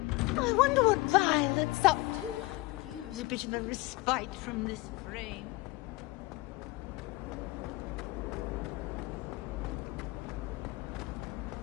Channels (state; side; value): quieter; right; 21.7 dB